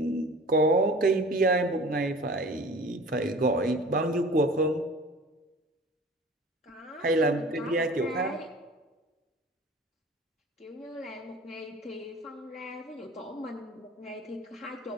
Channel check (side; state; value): both; normal; correlation 0.43